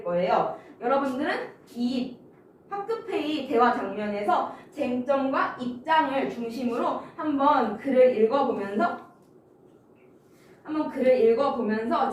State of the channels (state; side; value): identical; both; correlation 1.00